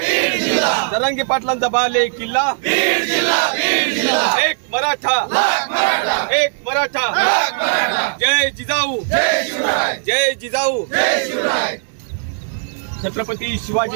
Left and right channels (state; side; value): silent; left; digital silence